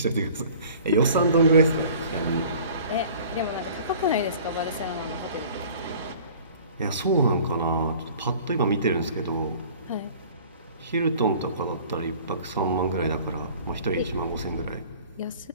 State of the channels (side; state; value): both; inverted; correlation -0.48